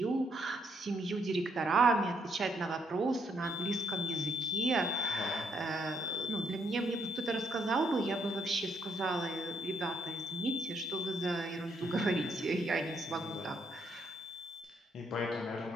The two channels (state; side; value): normal; both; correlation 0.73